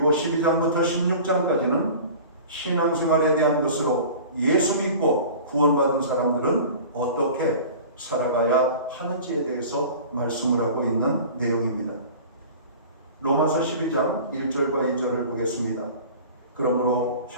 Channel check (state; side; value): inverted; both; correlation -0.40